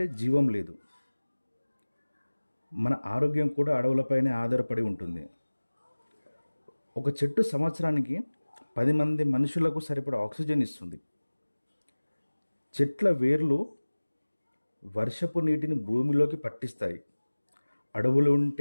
జీవం లేదు. మన ఆరోగ్యం కూడా అడవులపైనే ఆధారపడి ఉంటుంది. ఒక చెట్టు సంవత్సరానికి 10 మంది మనుషులకు సరిపడా ఆక్సిజన్ ఇస్తుంది. చెట్ల వేర్లు వర్షపు నీటిని భూమిలోకి పట్టిస్తాయి. అడవులు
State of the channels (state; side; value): inverted; both; correlation -1.00